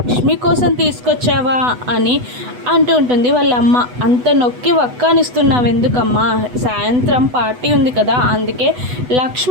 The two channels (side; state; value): left; late; 8.1 ms